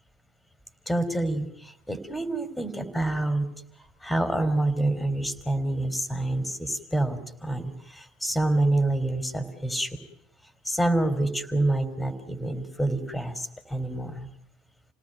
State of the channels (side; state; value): both; normal; correlation 0.93